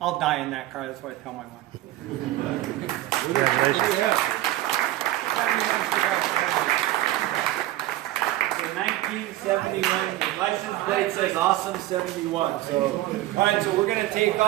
die in that car. That's what I tell my wife. The 1971, the license plate says awesome 71. So, all right, so we're going to take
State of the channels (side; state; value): left; quieter; 15.6 dB